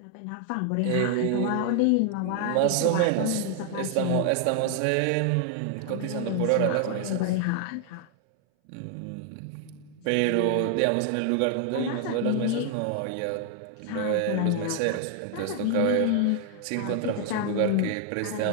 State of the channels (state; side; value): different; both; correlation 0.00